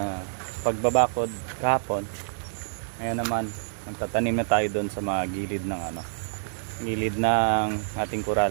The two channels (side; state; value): left; silent; digital silence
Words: pagbabakod kahapon, ngayon naman magtatanim na tayo doon sa mga gilid ng gilid ng ating